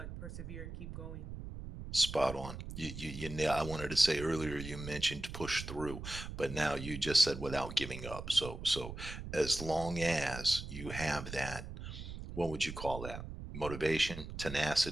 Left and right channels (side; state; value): right; noise; rumble, 9 dB below the sound